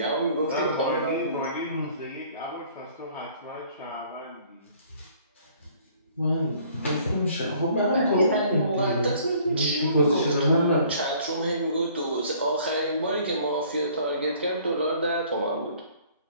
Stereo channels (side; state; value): both; inverted; correlation -0.57